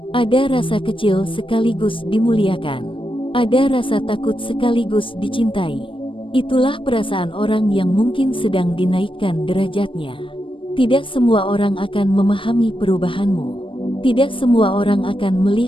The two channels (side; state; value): right; late; 0.25 ms